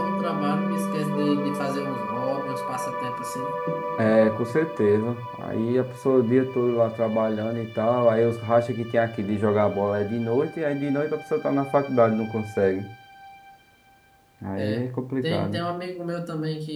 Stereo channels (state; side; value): identical; both; correlation 1.00